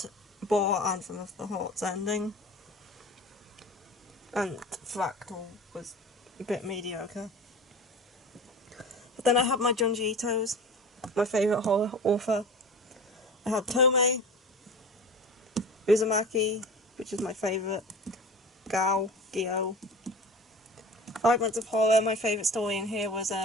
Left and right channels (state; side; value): normal; both; correlation 0.36